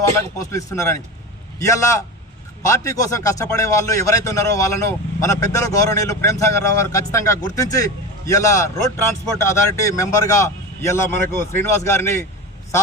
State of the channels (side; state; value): both; normal; correlation 0.26